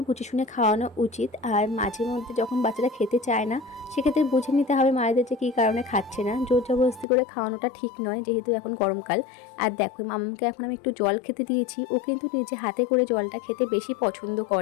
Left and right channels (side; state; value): right; drops out; at 7.1 s